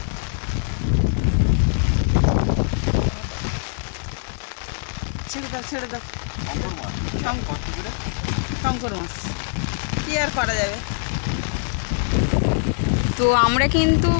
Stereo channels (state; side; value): silent; right; 64 dB below the other